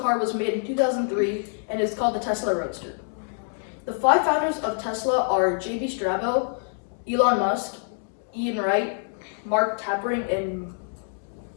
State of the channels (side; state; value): right; silent; 60 dB below the other